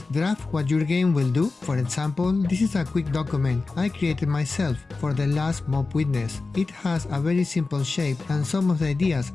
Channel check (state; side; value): quieter; right; 3.8 dB